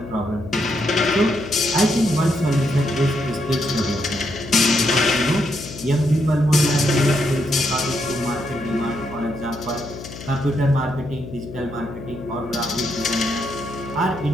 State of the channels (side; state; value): left; noise; hum, 12 dB below the sound